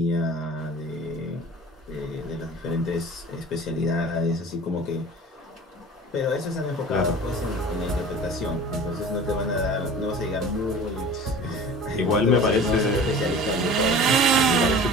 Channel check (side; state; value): both; normal; correlation 0.40